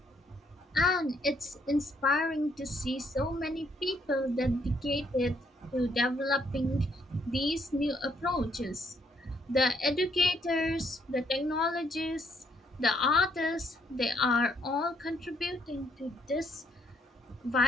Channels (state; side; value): normal; both; correlation 0.70